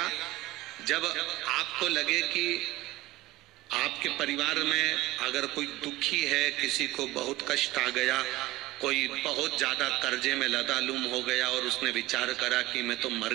जब आपको लगे कि आपके परिवार में अगर कोई दुखी है, किसी को बहुत कष्ट आ गया, कोई बहुत ज्यादा कर्जे में लदालूम हो गया और उसने विचार करा कि मैं तो मर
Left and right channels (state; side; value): quieter; left; 18.3 dB